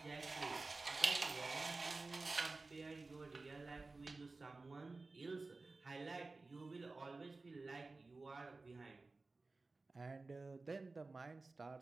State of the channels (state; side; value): quieter; left; 3.6 dB